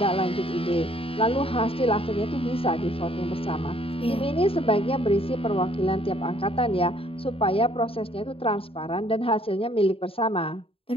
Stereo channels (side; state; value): right; late; 0.27 ms